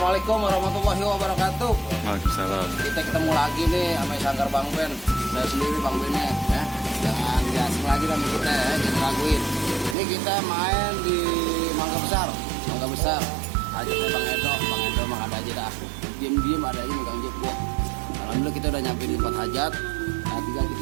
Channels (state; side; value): drops out; left; at 10.0 s